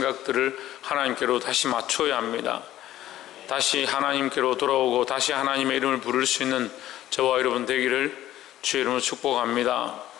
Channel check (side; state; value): right; quieter; 13.6 dB